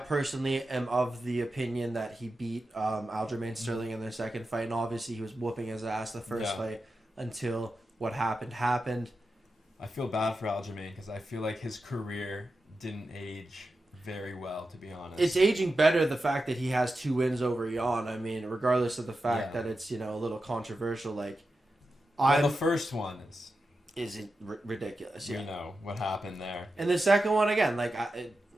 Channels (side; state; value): both; normal; correlation 0.90